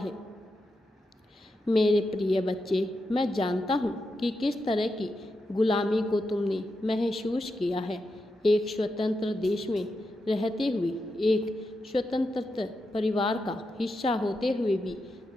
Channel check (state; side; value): normal; both; correlation 0.87